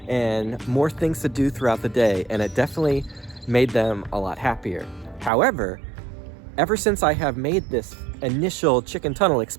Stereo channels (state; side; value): drops out; left; at 5.3 s